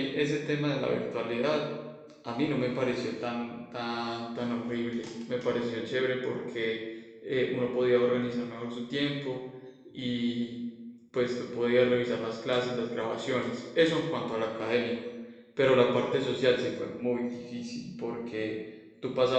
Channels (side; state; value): both; identical; correlation 1.00